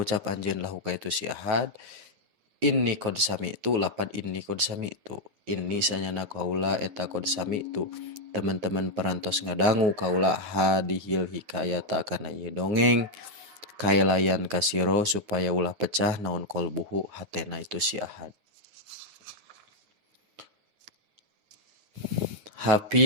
anjeun lahu ka itu si ahad inni kod sami itu lapad inni kod sami itu inni sanyana kaula eta kod sami itu teman-teman perantos ngadangu kaula hadihil hikayata kana ieu dongeng kaelayan kasiro supaya ulah pecah naon kolbuhu hatena itu si ahad.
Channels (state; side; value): late; left; 9.7 ms